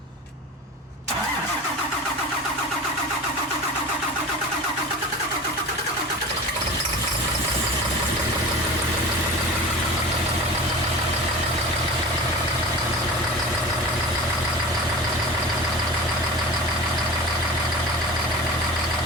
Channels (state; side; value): normal; both; correlation 0.34